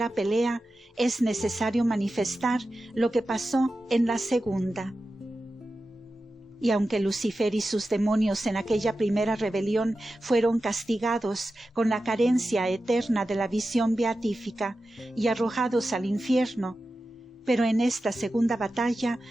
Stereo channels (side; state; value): both; normal; correlation 0.93